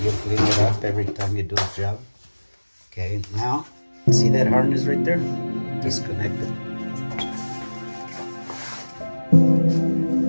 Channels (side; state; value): both; inverted; correlation -1.00